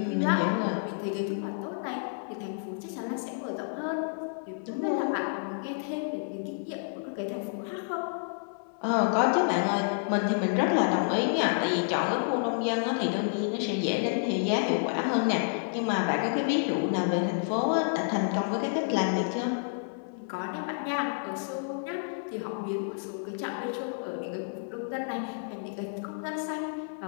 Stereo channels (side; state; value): right; silent; 58 dB below the other